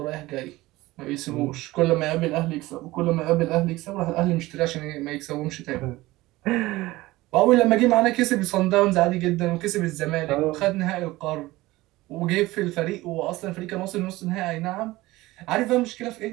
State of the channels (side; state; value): left; quieter; 18.9 dB